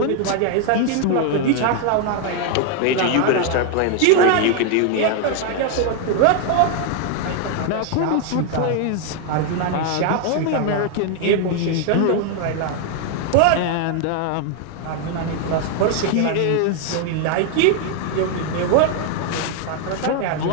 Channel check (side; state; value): both; different; correlation 0.00